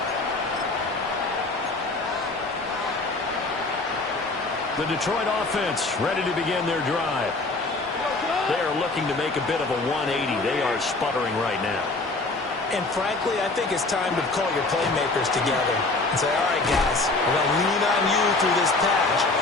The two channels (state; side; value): quieter; right; 3.3 dB